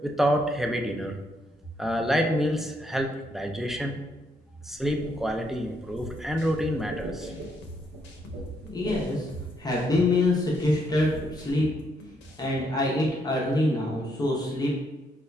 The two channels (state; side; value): normal; both; correlation 0.74